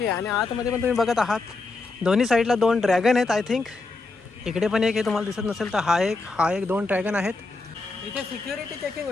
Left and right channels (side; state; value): right; quieter; 3.6 dB